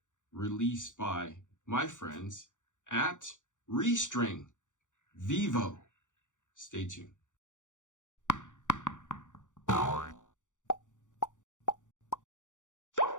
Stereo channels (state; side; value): late; right; 0.86 ms